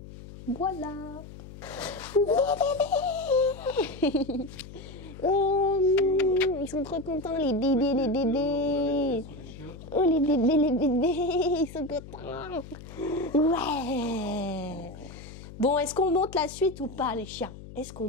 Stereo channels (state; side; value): noise; left; hum, 15 dB below the sound